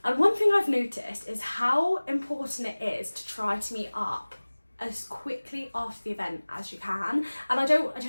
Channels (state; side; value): inverted; both; correlation -1.00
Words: And one thing I've noticed is how important it is to try to meet up as quickly after the event as you can. And I don't